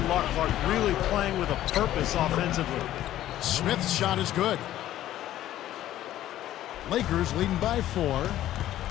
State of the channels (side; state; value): right; quieter; 13.2 dB